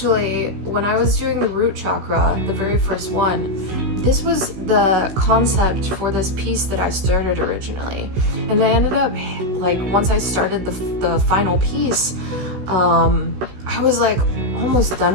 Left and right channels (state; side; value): late; left; 16 ms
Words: when I was doing the root chakra, the very first one, this was the concept for this piece that I started originally. And I ended up, like, once I started the final piece, I was like almost